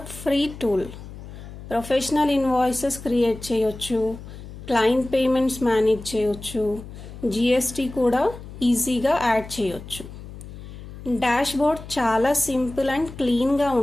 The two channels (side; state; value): left; noise; hum, 14 dB below the sound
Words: free tool. Professional invoices create చేయొచ్చు, క్లయింట్ పేమెంట్స్ మేనేజ్ చేయొచ్చు, జిఎస్టీ కూడా ఈజీగా యాడ్ చేయొచ్చు. డాష్బోర్డ్ చాలా సింపుల్ అండ్ క్లీన్గా